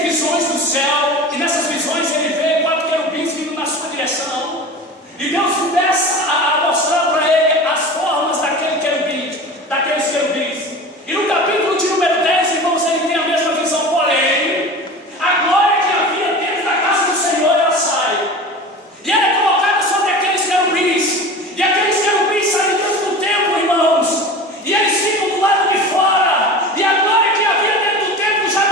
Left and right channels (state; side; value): normal; both; correlation 0.34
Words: do céu, e nessas visões ele vê 4 querubins vindo na sua direção, e Deus começa a mostrar para ele as formas daqueles querubins. E no capítulo de número 10, irmãos, ele tem a mesma visão, porém, a glória que havia dentro da casa do Senhor, ela sai, e ela é colocada sobre aqueles querubins, e aqueles querubins saem dentro do templo, irmãos, e eles ficam do lado de fora, e a glória que havia dentro do templo já